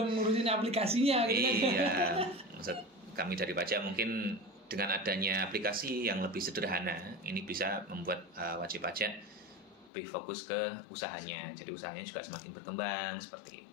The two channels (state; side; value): drops out; right; at 9.9 s